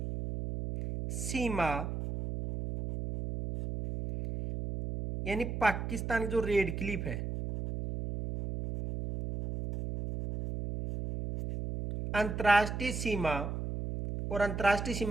सीमा यानी पाकिस्तान की जो रेड क्लिफ है, अंतर्राष्ट्रीय सीमा, और अंतर्राष्ट्रीय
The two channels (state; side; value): noise; right; hum, 4 dB below the sound